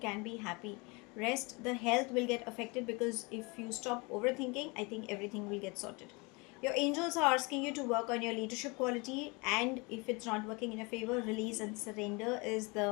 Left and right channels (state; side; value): quieter; right; 27.9 dB